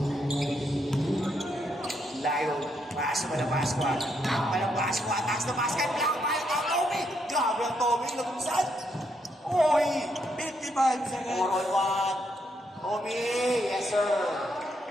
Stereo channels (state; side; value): normal; both; correlation 0.77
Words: Layo. Pass mo na Pasqua. Takpa ng Pasqua. Taas na basket. Black tayo ng Tommy. Grabe ang Tommy. Lagumsan. Oy. 55 seconds. 4 on 1. Tommy. Yes, sir.